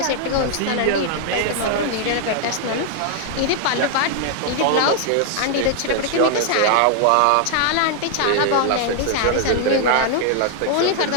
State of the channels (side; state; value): both; different; correlation 0.00